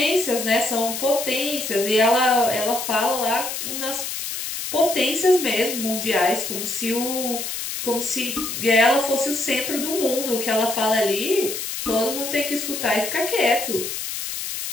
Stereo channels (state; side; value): noise; left; hiss, 5 dB below the sound